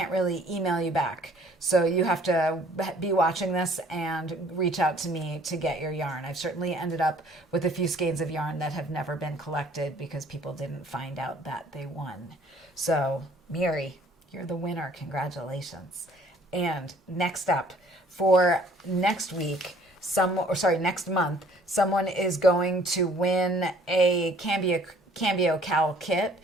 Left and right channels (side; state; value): both; normal; correlation 0.57